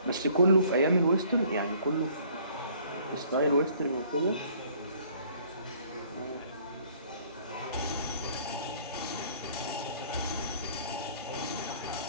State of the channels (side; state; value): both; inverted; correlation -0.58